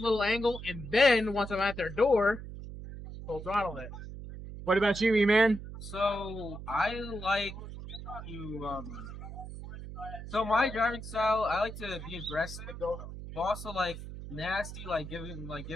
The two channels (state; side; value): noise; right; hum, 10 dB below the sound